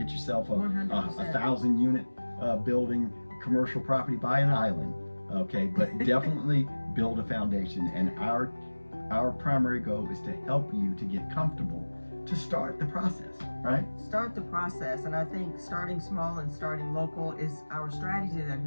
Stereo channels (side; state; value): both; inverted; correlation -1.00